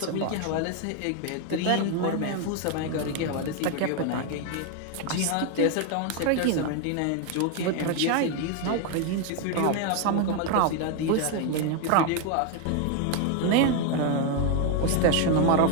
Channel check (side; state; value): both; different; correlation 0.01